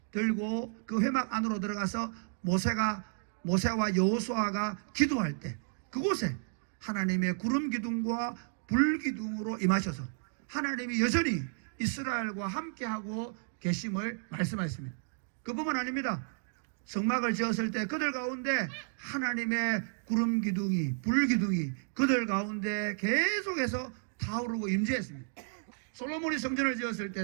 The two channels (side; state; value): left; silent; digital silence